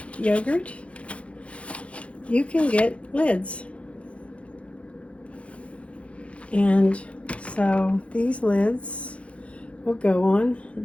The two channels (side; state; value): right; late; 0.062 ms